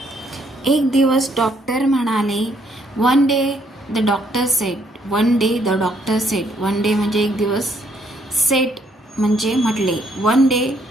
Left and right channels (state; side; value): normal; both; correlation 0.69